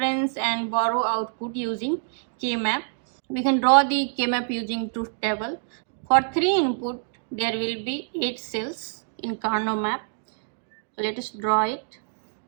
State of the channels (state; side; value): silent; left; digital silence